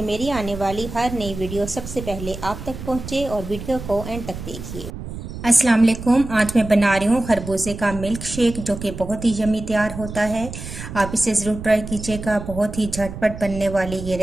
मेरी आने वाली हर नई वीडियो सबसे पहले आप तक पहुंचे और वीडियो को एंड तक देखिए। अस्सलाम वालेकुम। आज मैं बना रही हूँ खरबूजे का मिल्क शेक, जो कि बहुत ही यम्मी तैयार होता है। आप इसे ज़रूर ट्राई कीजिएगा। बहुत ही झटपट बनने वाली ये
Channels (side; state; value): right; noise; rumble, 10 dB below the sound